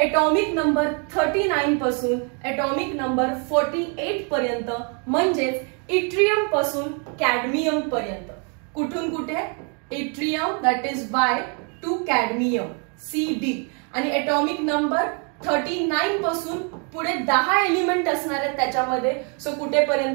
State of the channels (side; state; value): left; quieter; 37.9 dB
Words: नंबर 39 पासून एटॉमिक नंबर 48 पर्यंत, म्हणजेच इट्रियम पासून कॅडमियम पर्यंत. कुठून कुठे yttrium that is by two cadmium CD आणि एटॉमिक नंबर 39 पासून पुढे 10 एलिमेंट असणार आहेत त्याच्यामध्ये. सो